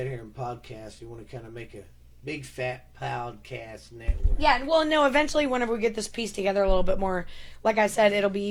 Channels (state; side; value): identical; both; correlation 1.00